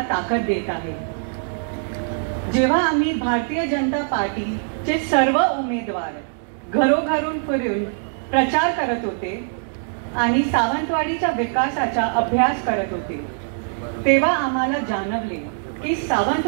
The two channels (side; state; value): left; silent; digital silence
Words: ताकद देत आहे। जेव्हा आम्ही भारतीय जनता पार्टीचे सर्व उमेदवार घरोघरून फिरून प्रचार करत होते आणि सावंतवाडीच्या विकासाचा अभ्यास करत होते तेव्हा आम्हाला जाणवले की